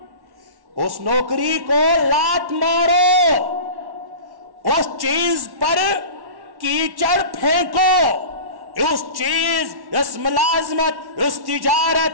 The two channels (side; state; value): left; late; 1.1 ms